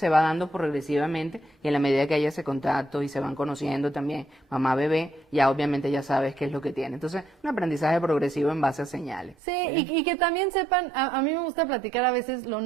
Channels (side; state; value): left; drops out; at 9.3 s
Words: va dando progresivamente y en la medida que haya ese contacto y se van conociendo también mamá-bebé, ya obviamente ya sabes qué es lo que tiene. Entonces, un aprendizaje progresivo en base a señales. Sí, y que también sepan, a mí me gusta platicar a veces lo